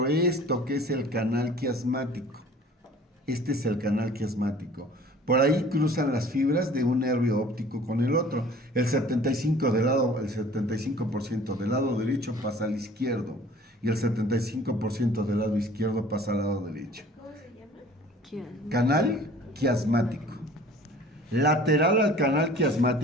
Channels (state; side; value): normal; both; correlation 0.48